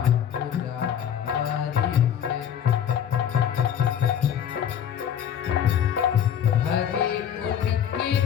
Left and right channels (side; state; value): right; quieter; 9.2 dB